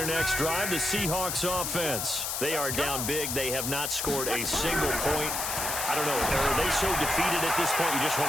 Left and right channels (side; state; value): left; noise; hiss, 2 dB below the sound